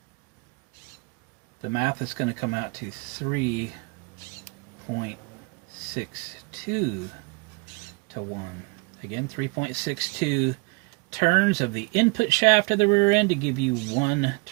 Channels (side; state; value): left; quieter; 30.2 dB